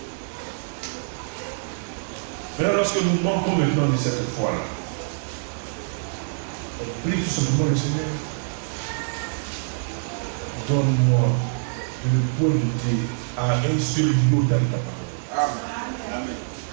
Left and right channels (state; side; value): silent; left; digital silence